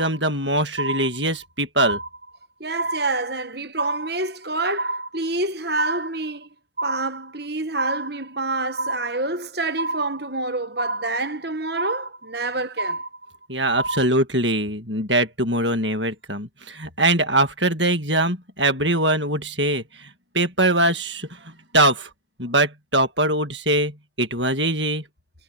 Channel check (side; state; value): both; normal; correlation -0.13